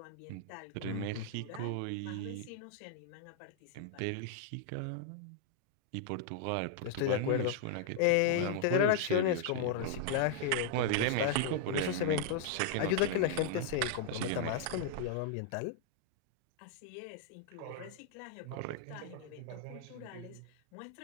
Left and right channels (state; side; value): different; both; correlation -0.01